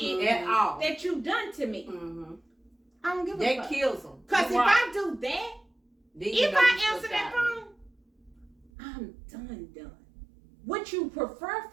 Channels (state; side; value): drops out; left; at 8.7 s